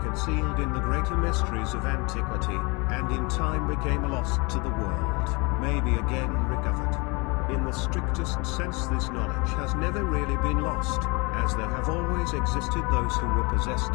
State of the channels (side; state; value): right; quieter; 28.5 dB